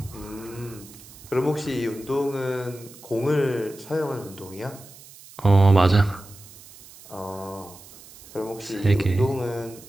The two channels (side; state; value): right; noise; hiss, 20 dB below the sound